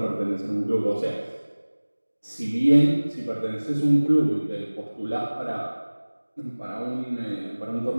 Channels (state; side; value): inverted; both; correlation -1.00